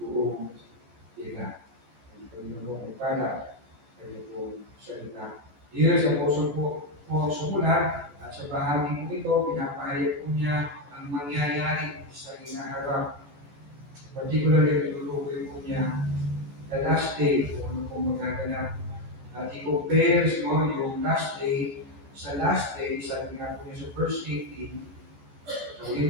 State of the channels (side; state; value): left; late; 14 ms